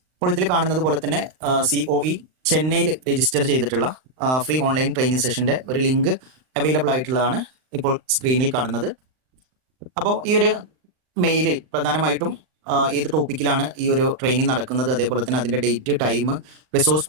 അപ്പോൾ ഇതിൽ കാണുന്നത് പോലെ തന്നെ COE ചെന്നൈയിൽ രജിസ്റ്റർ ചെയ്തിട്ടുള്ള ഫ്രീ ഓൺലൈൻ ട്രെയിനിങ് സെഷന്റെ ഒരു ലിങ്ക് അവൈലബിൾ ആയിട്ടുള്ളതാണ് ഇപ്പോൾ സ്ക്രീനിൽ കാണുന്നത്. അപ്പോൾ ഈ ഒരു മെയിലിൽ പ്രധാനമായിട്ടും ഏത് ടോപ്പിക്കിലാണ് ഈ ഒരു ട്രെയിനിങ് നടക്കുന്നത്, അതേപോലെ തന്നെ അതിന്റെ ഡേറ്റ്, ടൈം, റിസോഴ്സ്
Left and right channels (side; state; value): left; late; 39 ms